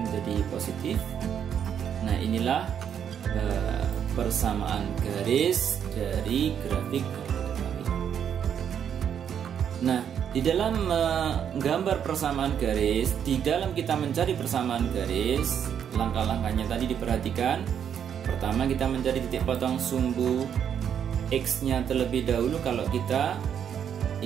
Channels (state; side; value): quieter; left; 8.5 dB